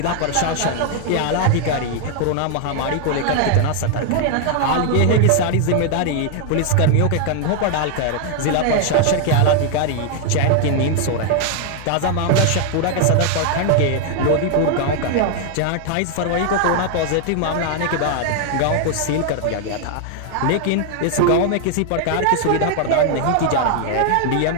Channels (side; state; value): both; different; correlation 0.00